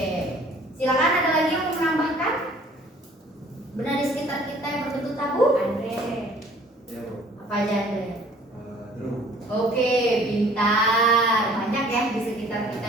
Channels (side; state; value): both; normal; correlation 0.54